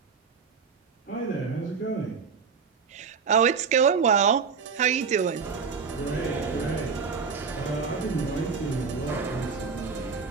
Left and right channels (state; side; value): quieter; left; 5.7 dB